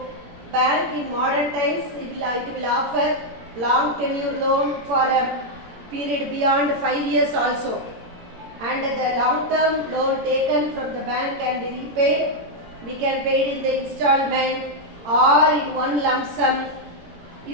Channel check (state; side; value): late; left; 18 ms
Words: bank in modern times, it will offer long tenure loan for a period beyond 5 years also. And the long term loan taken from the bank can be repaid. We can pay it in the installment or in one lump sum.